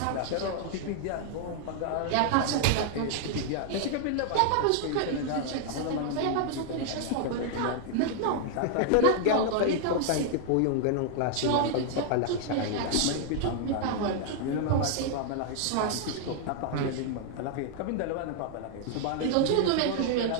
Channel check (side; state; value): both; different; correlation 0.00